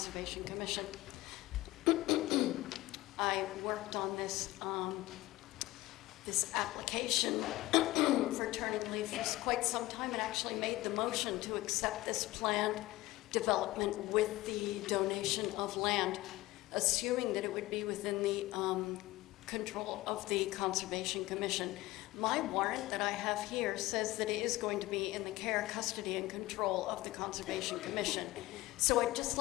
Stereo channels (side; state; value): right; quieter; 18.3 dB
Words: Commission. I worked on this this application for turning leaf for quite some time and actually made the motion to accept this planned development with the donation of land, assuming that it would be within the control of the Conservation Commission. My warrant that I have here says that it is going to be in the care, custody, and control of the Conservation Commission. So I'd just